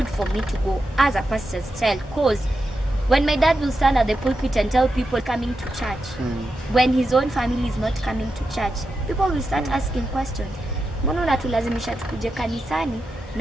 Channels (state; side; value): normal; both; correlation 0.88